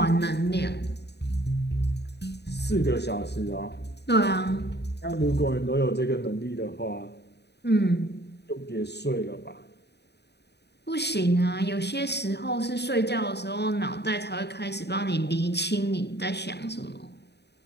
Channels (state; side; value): late; right; 0.49 ms